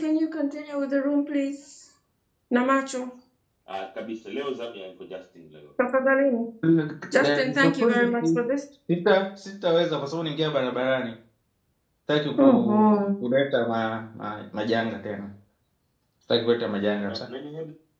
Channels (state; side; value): identical; both; correlation 1.00